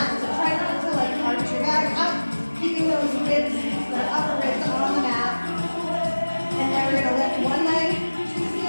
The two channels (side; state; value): both; inverted; correlation -1.00